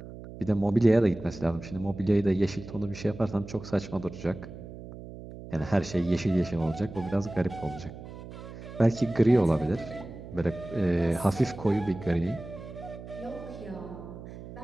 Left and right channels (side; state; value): right; noise; hum, 13 dB below the sound